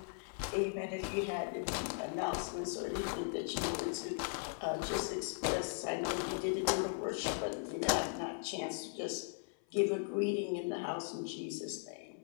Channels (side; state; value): right; silent; 52 dB below the other